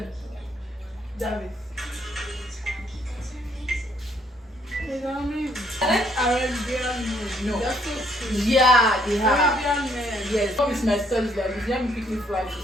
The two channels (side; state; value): both; normal; correlation 0.68